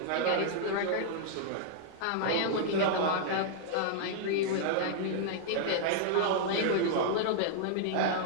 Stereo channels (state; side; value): different; both; correlation -0.01